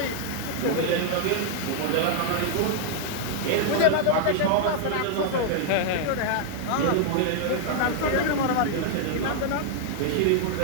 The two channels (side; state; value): both; different; correlation -0.01